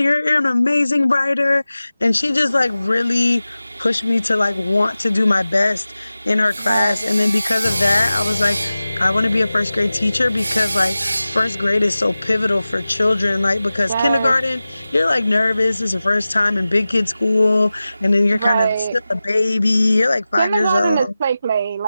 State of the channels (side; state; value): both; inverted; correlation -0.96